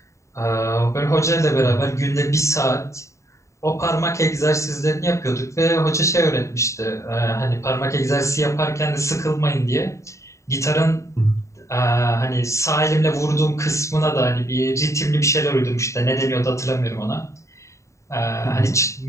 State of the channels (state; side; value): late; right; 0.14 ms